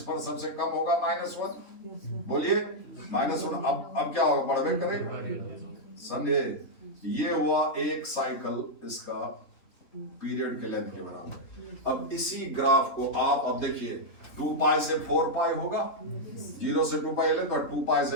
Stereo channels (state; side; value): late; right; 3.4 ms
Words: पर सबसे कम होगा -1। बोलिए -1। अब क्या होगा, बढ़वे करेगा। समझे? ये हुआ एक साइकिल इसका पीरियड के लेंथ के बराबर। अब इसी ग्राफ को आप अब देखिए, 2 पाई से 4 पाई होगा, 0 से 2 पाई लेंथ और 2 पाई